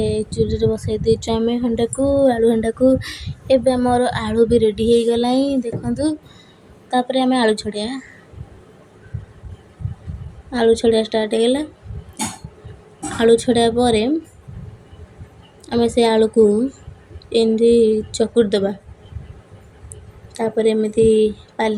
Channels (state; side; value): identical; both; correlation 1.00